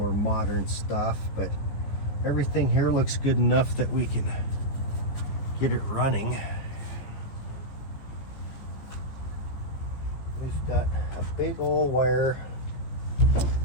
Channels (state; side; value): late; right; 15 ms